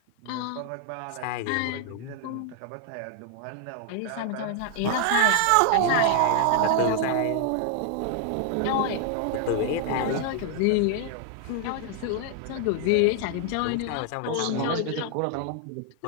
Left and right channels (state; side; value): different; both; correlation 0.00